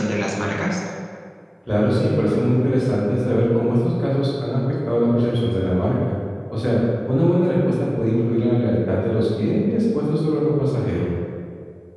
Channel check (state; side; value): identical; both; correlation 1.00